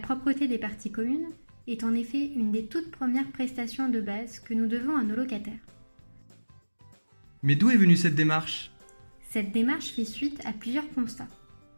des parties communes est en effet une des toutes premières prestations de base que nous devons à nos locataires. Mais d'où est venue cette démarche ? Cette démarche fait suite à plusieurs constats.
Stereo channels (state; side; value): inverted; both; correlation -1.00